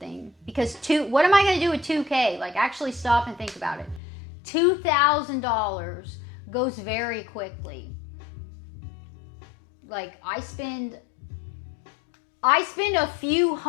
Because what am I going to do with 2K? Like, actually stop and think about it. $2,000 goes very quickly. Like, I spend a few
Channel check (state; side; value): drops out; right; at 4.0 s